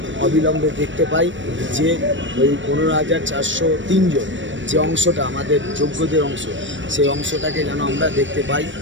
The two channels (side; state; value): left; late; 0.55 ms